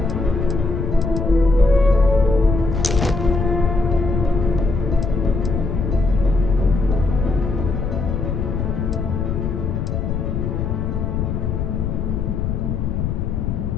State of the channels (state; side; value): noise; left; rumble, 1 dB below the sound